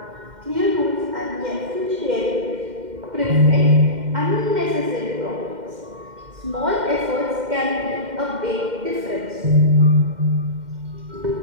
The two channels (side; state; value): left; late; 2.1 ms